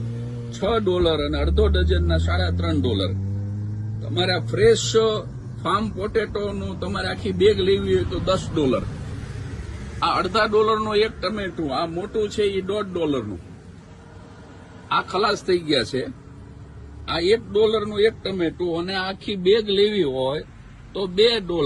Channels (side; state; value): both; identical; correlation 1.00